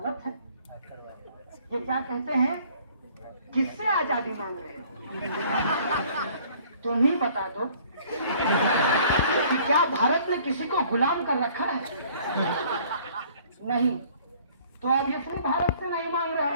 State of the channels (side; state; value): both; inverted; correlation -0.56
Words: है? ये क्या कहते हैं, किससे आजादी मांग रहे हैं? तुम ही बता दो। कि क्या भारत ने किसी को गुलाम कर रखा है? नहीं। तो अब ये सिर्फ भारत से नहीं मांग रहे